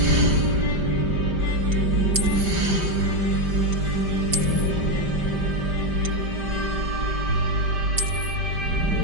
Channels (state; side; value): late; left; 5.1 ms